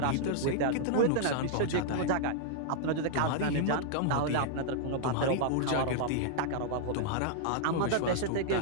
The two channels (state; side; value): different; both; correlation -0.01